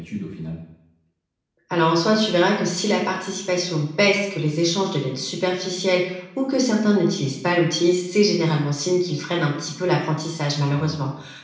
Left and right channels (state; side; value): identical; both; correlation 1.00